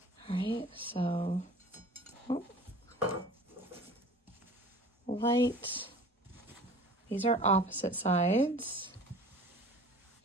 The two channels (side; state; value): both; normal; correlation 0.44